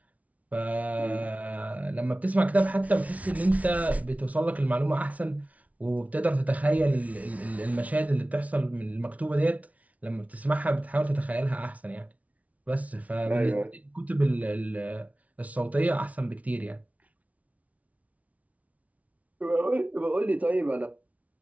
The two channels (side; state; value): left; late; 0.068 ms